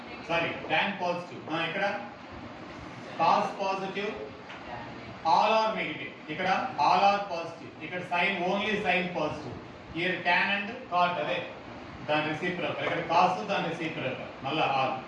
sorry tan positive. ఇక్కడ cos positive, all are negative. ఇక్కడ all are positive. ఇక్కడ sin only sin positive. Here tan and cot అదే దాని రెసిప్రోకల్. ఇక్కడ cos దాని రెసిప్రోకల్. మళ్ళా all.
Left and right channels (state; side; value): identical; both; correlation 1.00